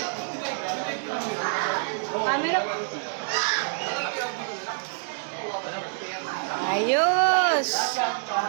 Camera po. Ayos.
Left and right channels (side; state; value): left; silent; digital silence